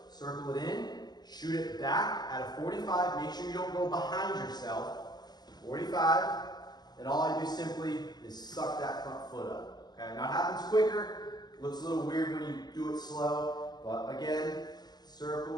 circle it in, shoot it back at a 45. Make sure you don't go behind yourself. 45. and all I do simply is suck that front foot up. Okay, now it happens quicker, it looks a little weird when you do it slow, but again,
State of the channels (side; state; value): right; late; 0.20 ms